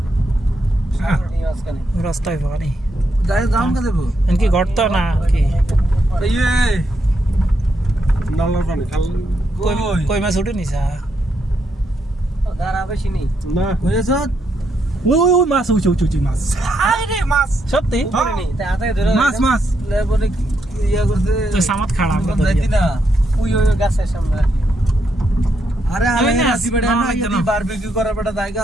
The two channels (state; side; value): normal; both; correlation 0.79